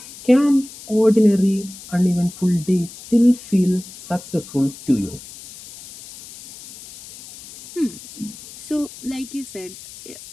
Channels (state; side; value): noise; left; hiss, 17 dB below the sound